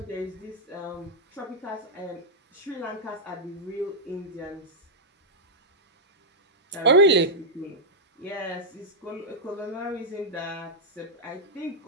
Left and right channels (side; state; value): both; normal; correlation -0.08